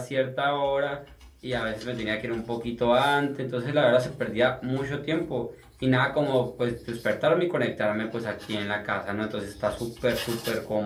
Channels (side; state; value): both; identical; correlation 1.00